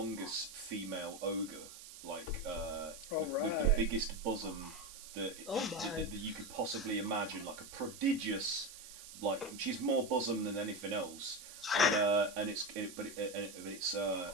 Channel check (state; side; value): noise; right; hiss, 14 dB below the sound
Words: female ogre like with the Alright. biggest bosom that, Oh my. that you could possibly imagine, like a prodigious, like she's more bosom than anything else. And it's